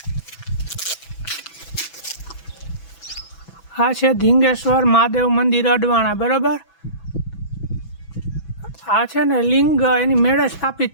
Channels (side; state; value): right; late; 6.1 ms